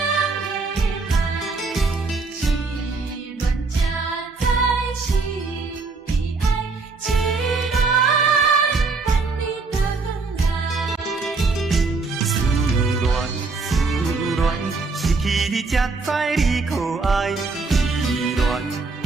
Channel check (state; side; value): quieter; left; 4.1 dB